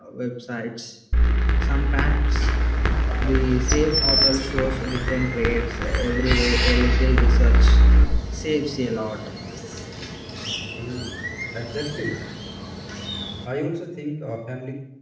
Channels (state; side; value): identical; both; correlation 1.00